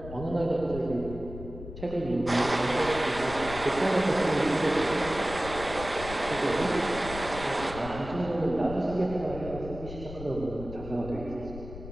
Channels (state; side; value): noise; left; rumble, 11 dB below the sound